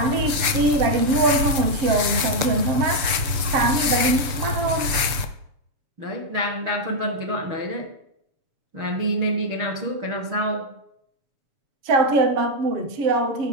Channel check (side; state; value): left; late; 6.8 ms